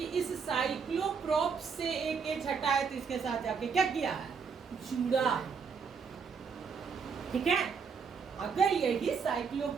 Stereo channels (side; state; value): left; quieter; 5.9 dB